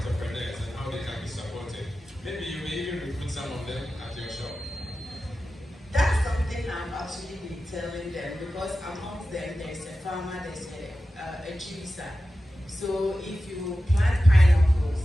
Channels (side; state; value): both; normal; correlation 0.94